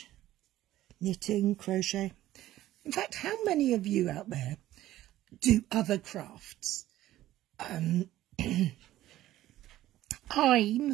knitting, crochet. In fact, how many of you out there do other crafts? I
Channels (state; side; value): quieter; left; 14.4 dB